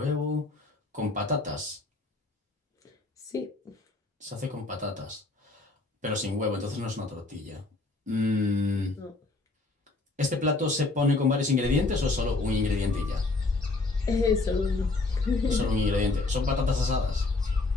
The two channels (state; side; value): quieter; right; 3.3 dB